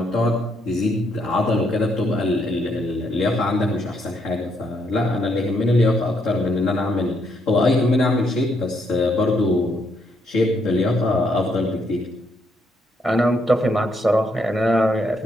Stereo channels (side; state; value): both; normal; correlation 0.74